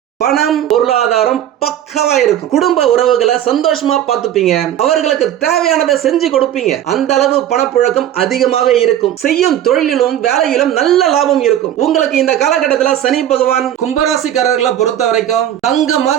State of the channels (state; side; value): quieter; left; 11.2 dB